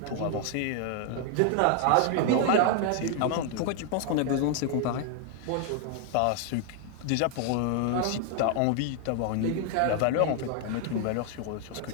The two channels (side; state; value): both; different; correlation 0.00